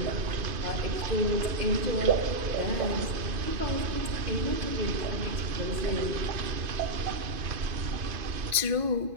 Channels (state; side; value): late; left; 2.5 ms